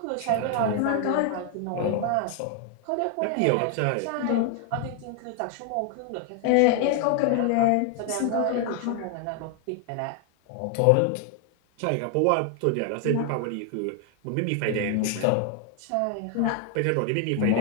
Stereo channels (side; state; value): both; different; correlation 0.00